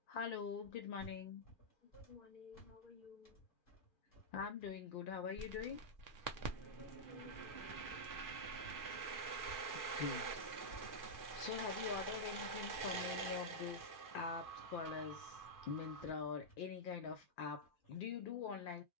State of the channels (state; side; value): late; right; 2.4 ms